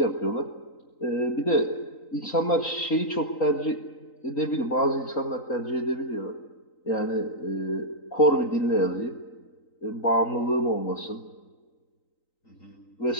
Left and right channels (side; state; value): right; late; 3.9 ms